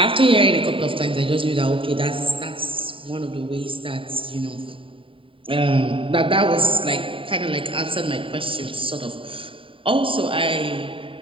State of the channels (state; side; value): late; left; 0.25 ms